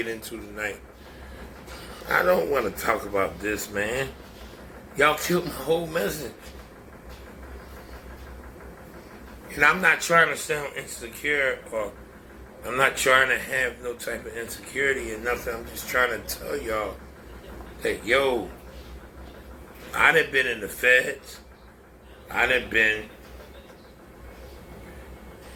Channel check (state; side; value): identical; both; correlation 1.00